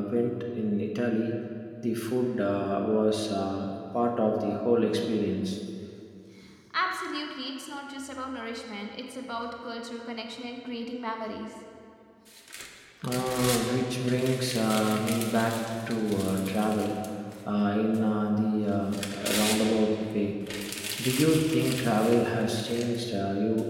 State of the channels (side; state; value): both; identical; correlation 1.00